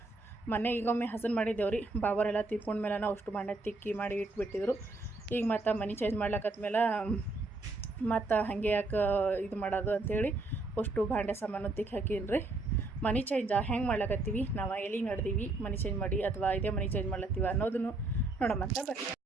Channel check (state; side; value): quieter; left; 3.1 dB